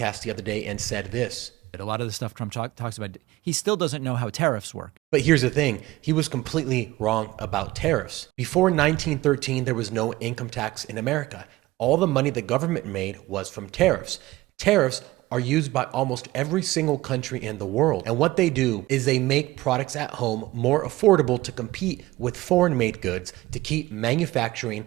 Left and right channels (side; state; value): left; quieter; 18.3 dB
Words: the other day and said this. A lot of the stuff Trump talks about, he still doesn't know how tariffs work. But here's the thing, he was completely wrong about tariffs. Before 1913, there was no income tax in America. All the money the government made was from tariffs. Tariffs are used by almost every single country in the world. And what they do is they make products at home more affordable to compete with foreign-made goods to keep manufacturing